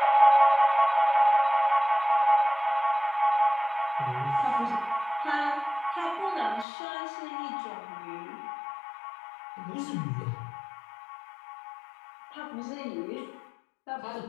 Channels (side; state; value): right; drops out; at 6.7 s